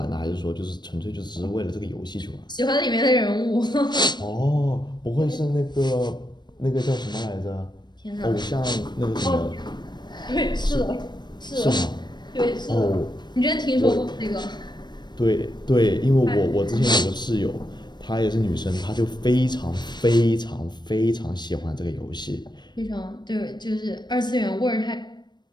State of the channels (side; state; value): right; late; 0.21 ms